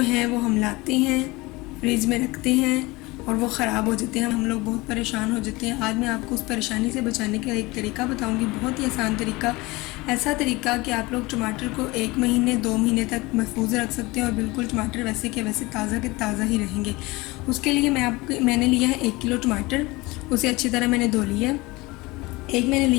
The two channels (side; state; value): right; quieter; 22.5 dB